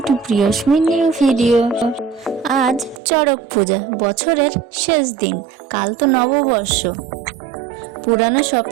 to Priyasmi new video. আজ চড়ক পূজা, বছরের শেষ দিন। কাল তো নববর্ষ। পুরানো সব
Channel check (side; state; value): left; drops out; at 3.0 s